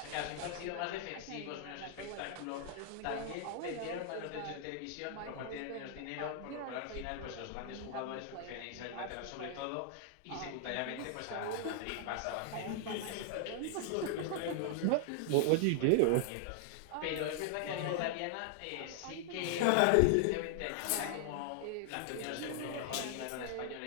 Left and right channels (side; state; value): both; different; correlation -0.01